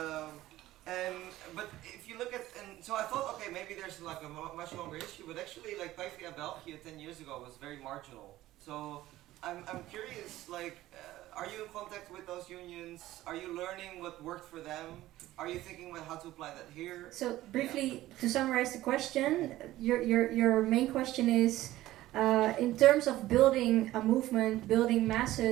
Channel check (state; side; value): quieter; left; 15.7 dB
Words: But if you look at, and so I thought, okay, maybe there's like a much longer issue, but actually like PvdA Belgium 10 years ago was very marginal. So I'm curious, like, are you in contact with those unions? Are you learning what worked for them? Are you thinking about how to apply that here? So briefly, to summarize the question, your main question is, in terms of building a movement, building